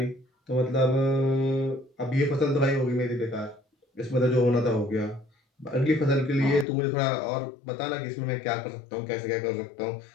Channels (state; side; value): drops out; right; at 6.7 s